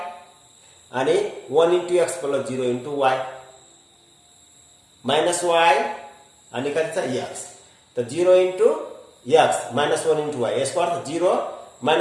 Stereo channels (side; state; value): both; identical; correlation 1.00